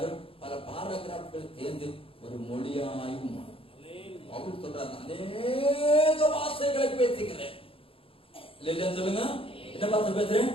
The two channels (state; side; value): late; right; 0.27 ms